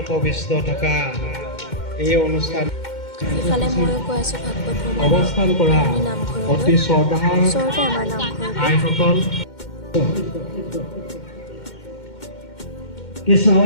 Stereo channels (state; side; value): late; right; 2.1 ms